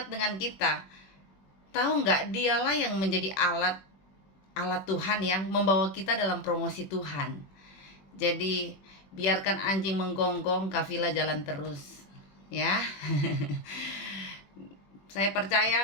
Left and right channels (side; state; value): right; late; 21 ms